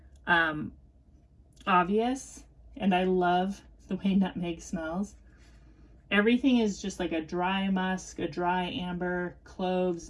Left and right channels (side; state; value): both; identical; correlation 1.00